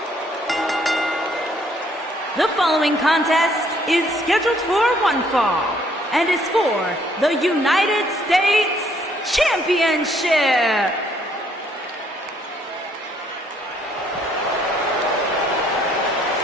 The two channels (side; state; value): both; normal; correlation 0.66